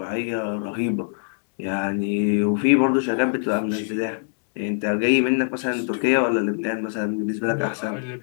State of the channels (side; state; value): right; silent; digital silence